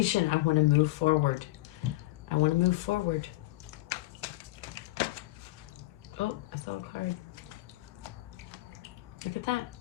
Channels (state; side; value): quieter; right; 18.8 dB